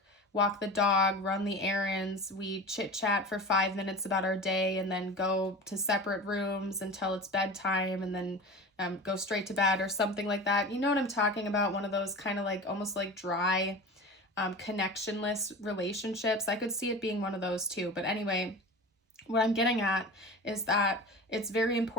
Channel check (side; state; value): both; normal; correlation 0.33